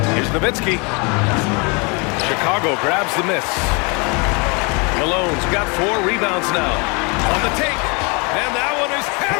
Here's Nowitzki. Chicago grabs the miss. Malone's got 4 rebounds now. On the take. And that one is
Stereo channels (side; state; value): right; quieter; 31.2 dB